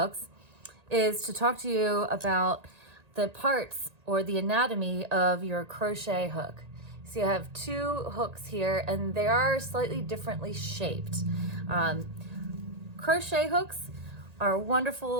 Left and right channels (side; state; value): left; late; 1.8 ms